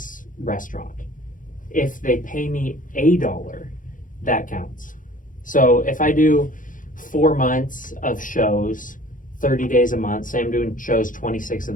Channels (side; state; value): right; late; 0.39 ms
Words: restaurant. If they pay me $1, that counts. So if I do 4 months of shows, 30 days a month, say I'm doing shows 26 of